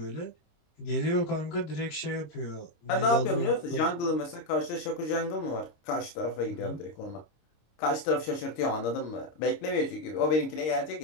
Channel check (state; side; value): late; right; 26 ms